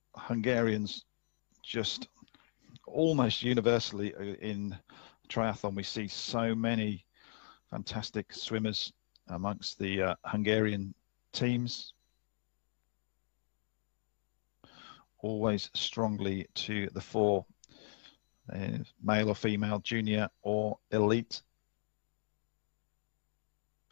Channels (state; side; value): silent; right; digital silence